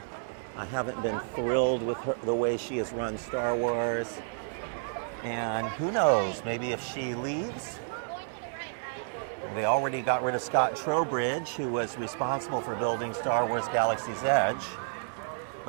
I haven't been thrilled with her, the way she has run Star Wars. And who knows, maybe if she leaves, well, they already got rid of Scott Trowbridge, who was responsible for building Star Wars Galaxy's Edge.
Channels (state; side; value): silent; left; 57 dB below the other